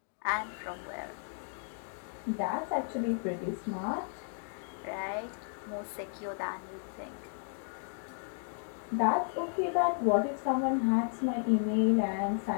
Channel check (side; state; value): right; silent; 55 dB below the other